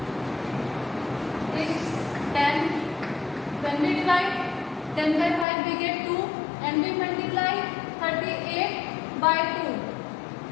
is 10. When we divide 10 by 5 we get 2 and we multiply 38 by 2.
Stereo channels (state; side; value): drops out; right; at 5.5 s